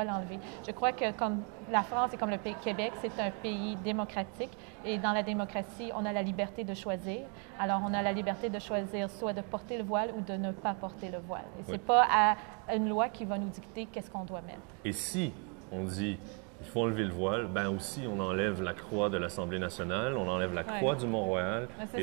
l'enlever. Je crois que comme la France et comme le Québec, c'est un pays démocratique et dans la démocratie, on a la liberté de choisir. Alors, on a la liberté de choisir soit de porter le voile ou de ne pas porter le voile. Et c'est pas à une loi qui va nous dicter qu'est-ce qu'on doit mettre. Et si on dit il faut enlever le voile, ben aussi on enlève la croix de l'Assemblée nationale, on enlève la croix du Mont-Royal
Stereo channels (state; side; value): quieter; left; 36.6 dB